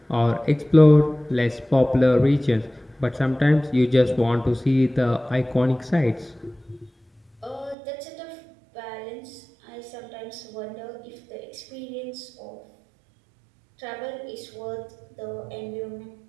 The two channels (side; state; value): left; drops out; at 7.8 s